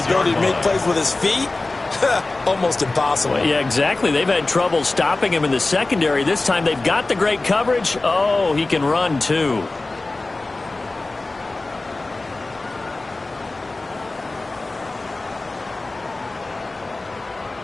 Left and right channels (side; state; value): right; quieter; 3.2 dB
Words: to make plays with his feet, almost impossible. Well, yeah, exactly. They've had trouble stopping him in the secondary. This time they've got the great coverage. Oh, he can run too.